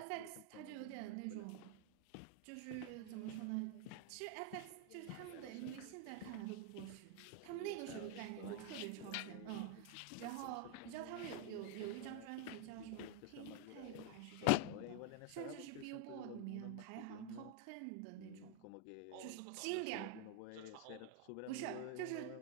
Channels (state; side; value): different; both; correlation 0.01